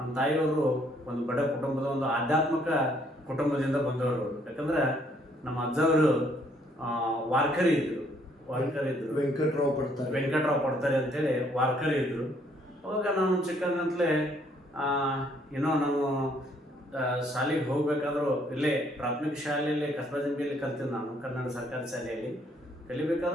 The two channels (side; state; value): both; normal; correlation 0.66